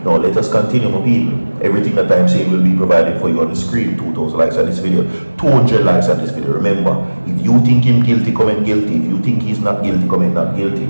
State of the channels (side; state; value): both; inverted; correlation -1.00